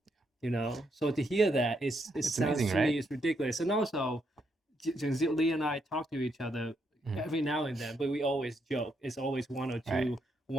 So to hear that, it sounds amazing, to right? me it's ridiculous. And also, Lee and I talk to each other every now and then, but we always joke. It's always one or two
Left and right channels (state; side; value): normal; both; correlation 0.77